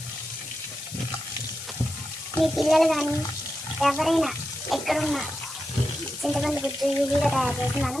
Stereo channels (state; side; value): noise; left; hiss, 11 dB below the sound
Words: మీ పిల్లలు కానీ ఎవరైనా ఎక్కడున్నా చింతపండు గుజ్జు ఈజీగా తయారు చేసి